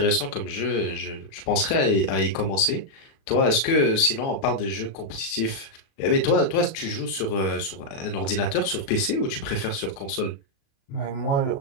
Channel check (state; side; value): late; right; 36 ms